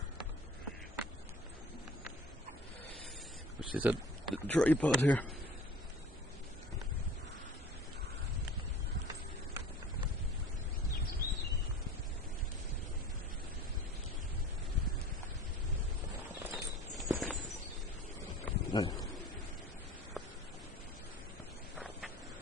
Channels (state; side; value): normal; both; correlation 0.43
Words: Which is a tripod here. Right.